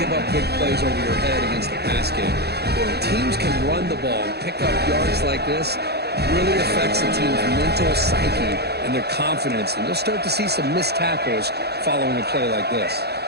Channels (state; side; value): late; left; 0.48 ms